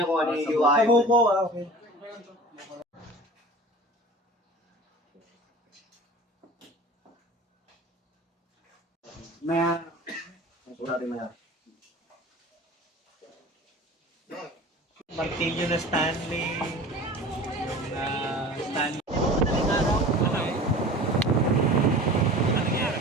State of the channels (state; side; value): normal; both; correlation 0.39